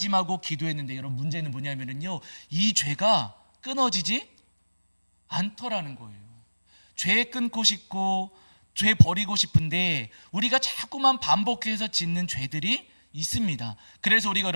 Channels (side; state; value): both; inverted; correlation -1.00